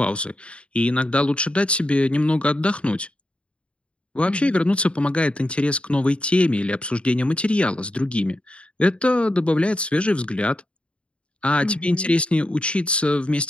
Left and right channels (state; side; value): late; right; 0.058 ms